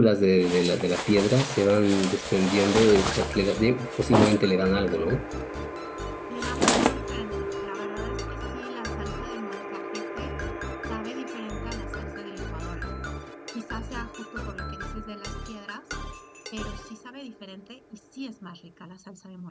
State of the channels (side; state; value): both; identical; correlation 1.00